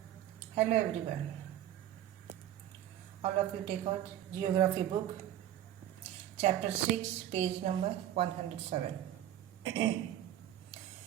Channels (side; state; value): left; quieter; 11.9 dB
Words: Hello, everyone. All of you take out Geography book, Chapter 6, page number 107.